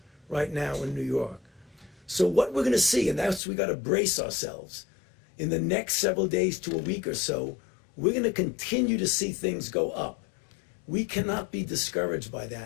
right now in New York. So what we're going to see, and that's we got to brace ourselves, in the next several days to a week or so, we're going to continue to see things go up. We cannot be discouraged by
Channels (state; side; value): drops out; right; at 3.4 s